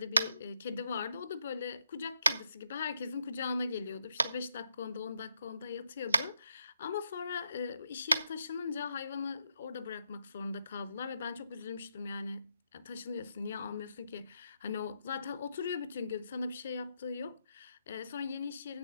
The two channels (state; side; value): inverted; both; correlation -0.80